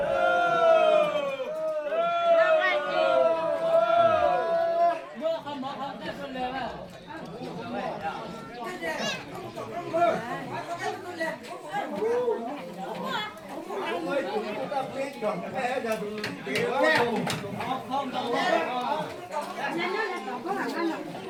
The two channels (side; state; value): both; identical; correlation 1.00